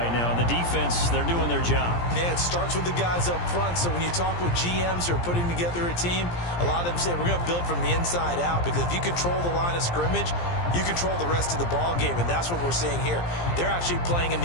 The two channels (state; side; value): late; right; 17 ms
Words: now. And the defense, they're doing their job. Yeah, it starts with the guys up front. So when you talk with GMs who are putting together a team, a lot of them say we're going to build from the inside out, because if you control the line of scrimmage, you control the rest of the ball game, and that's what we're seeing here. They're actually playing in